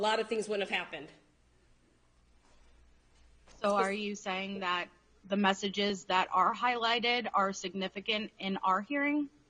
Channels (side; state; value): both; identical; correlation 1.00